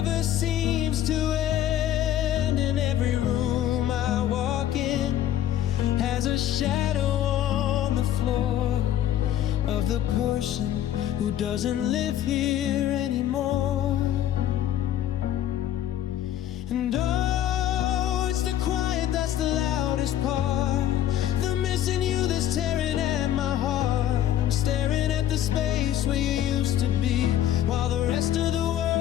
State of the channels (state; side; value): quieter; right; 11.6 dB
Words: seems to end. And every room I walk in has a shadow on the floor of the person who doesn't live here anymore. And oh, it's the quiet that's the loudest part, the missing you that's tearing at my heart. I'm staring at the space where you used to be, while the rest of the